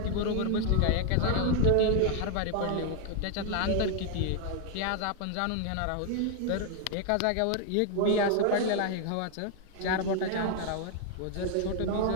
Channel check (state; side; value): different; both; correlation 0.00